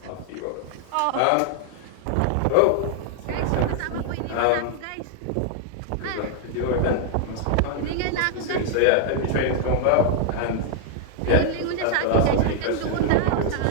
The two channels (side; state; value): both; different; correlation 0.00